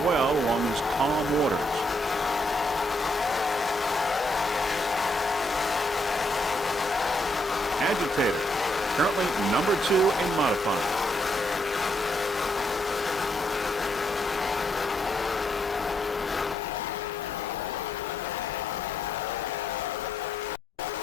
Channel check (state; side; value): normal; both; correlation 0.76